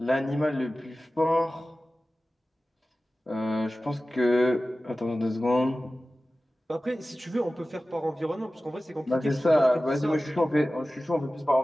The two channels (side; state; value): both; normal; correlation 0.96